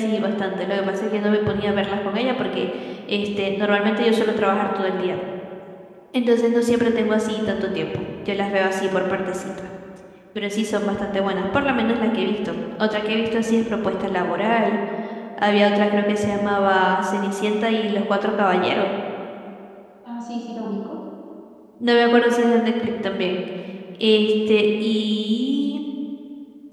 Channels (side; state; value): both; identical; correlation 1.00